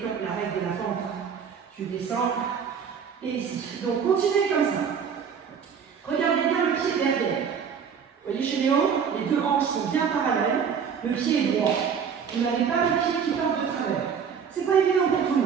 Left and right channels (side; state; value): left; quieter; 6.9 dB